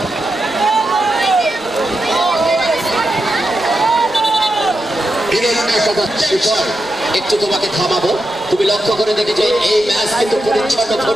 একটু তোমাকে থামাবো। তুমি লক্ষ্য করে দেখেছো এই ম্যাচ কিন্তু পরিচ্ছন্ন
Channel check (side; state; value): both; normal; correlation 0.87